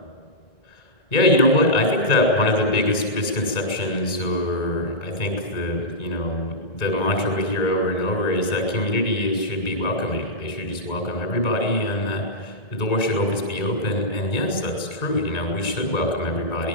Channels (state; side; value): late; right; 1.9 ms